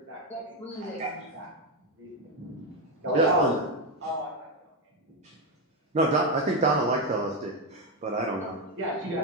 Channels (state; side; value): normal; both; correlation 0.08